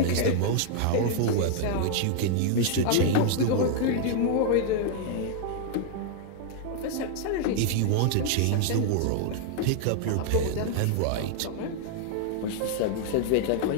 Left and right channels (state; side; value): different; both; correlation 0.00